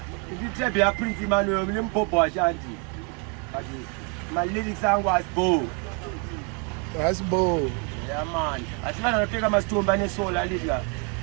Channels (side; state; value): left; quieter; 35.6 dB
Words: If you tell me a Prince Emmanuel, I'm Popo Ashanti. But my lyrics song was Bo. That's Bo. Yeah, man. I think I'm going to take my stone by the soul. I live here.